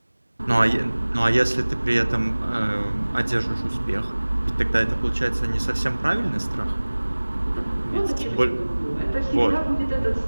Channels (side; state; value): both; inverted; correlation -1.00